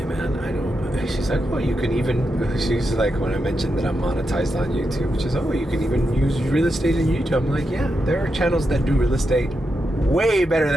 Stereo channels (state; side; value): normal; both; correlation 0.86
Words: man, I don't... She's like, oh, you can even... She's like, when I mentioned that I'm monetized on YouTube, she's like, oh, you can even use real estate in YouTube. I'm like, yeah, there are channels that do real estate way better